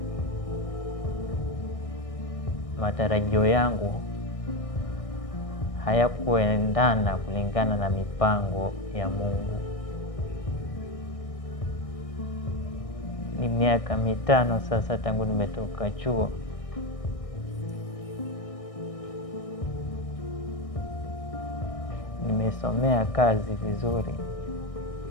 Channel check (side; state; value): right; late; 1.6 ms